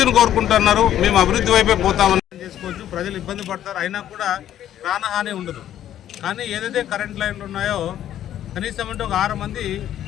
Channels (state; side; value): quieter; right; 11.4 dB